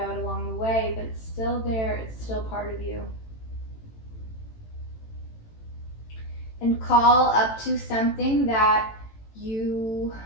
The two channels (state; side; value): late; right; 18 ms